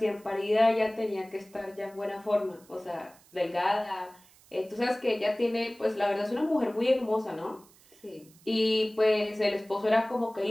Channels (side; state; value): right; noise; hiss, 27 dB below the sound